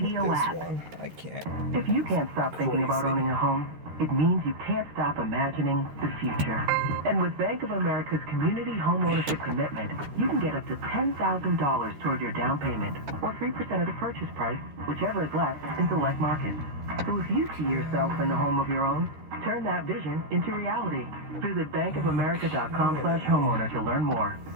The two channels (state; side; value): late; left; 13 ms